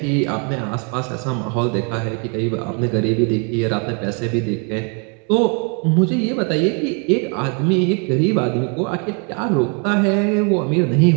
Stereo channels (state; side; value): quieter; left; 36.9 dB